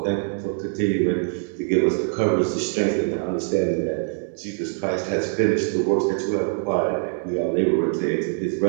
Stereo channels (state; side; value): silent; left; 63 dB below the other